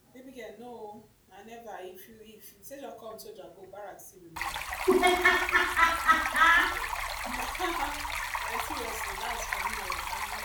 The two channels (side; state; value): both; identical; correlation 1.00